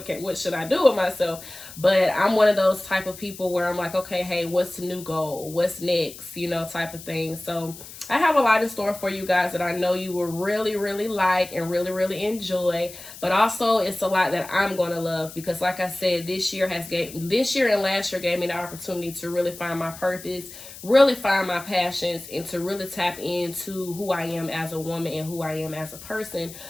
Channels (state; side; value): noise; left; hiss, 15 dB below the sound